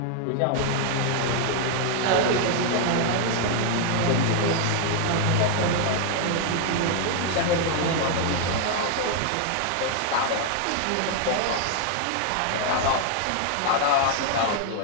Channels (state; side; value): different; both; correlation 0.00